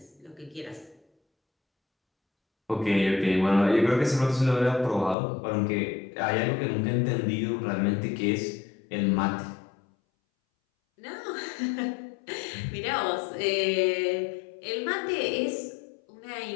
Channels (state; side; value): drops out; right; at 5.2 s